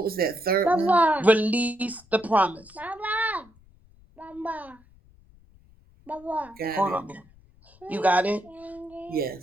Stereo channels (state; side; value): noise; left; rumble, 27 dB below the sound